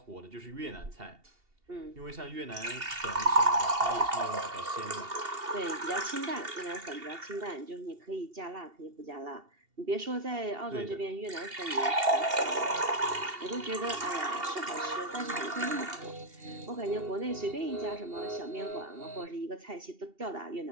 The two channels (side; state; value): left; late; 2.7 ms